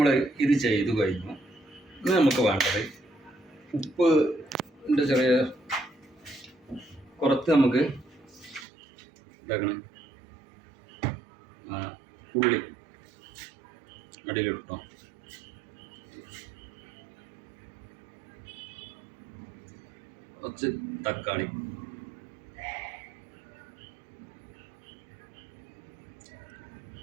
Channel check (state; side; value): drops out; left; at 8.7 s